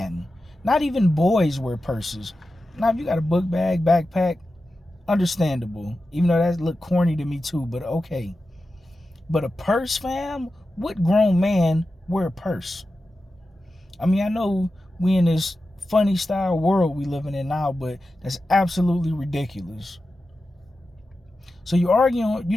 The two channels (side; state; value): both; normal; correlation 0.92